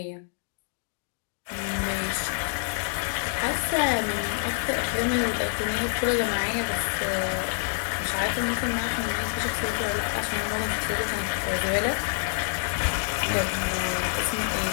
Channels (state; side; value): silent; right; digital silence